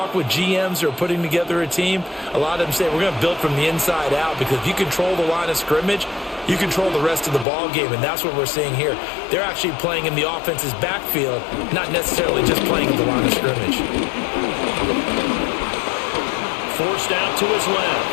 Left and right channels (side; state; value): right; drops out; at 7.5 s